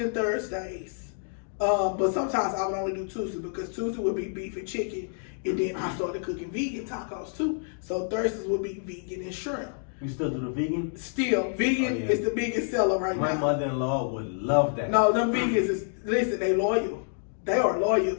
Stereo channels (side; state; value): right; silent; 59 dB below the other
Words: and Thursdays. But sometimes I would only do Tuesdays because Tuesday would be beef and chicken. And then I started cooking vegan tacos too. So Thursdays would be vegan and shrimp. You still do the vegan? Still, vegan is the biggest seller right now. My mother-in-law would love that. No, them vegans is, listen, they loyal. They are loyal